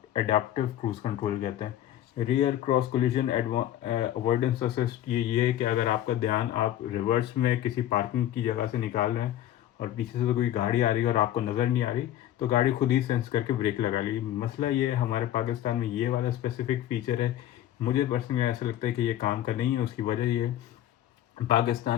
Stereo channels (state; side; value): quieter; right; 12.4 dB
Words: एडाप्टिव क्रूज कंट्रोल कहते हैं। Rear cross collision avoidance assist ये है कि अगर आपका ध्यान, आप रिवर्स में किसी पार्किंग की जगह से निकाल रहे हैं और पीछे से तो कोई गाड़ी आ रही है और आपको नज़र नहीं आ रही, तो गाड़ी खुद ही सेंस करके ब्रेक लगा ली। मसला ये है हमारे पाकिस्तान में ये वाला स्पेसिफिक फीचर है, मुझे पर्सनली ऐसा लगता है कि ये काम का नहीं है। उसकी वजह ये है,